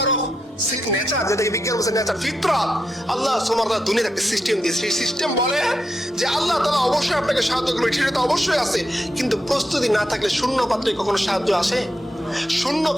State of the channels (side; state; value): both; normal; correlation 0.84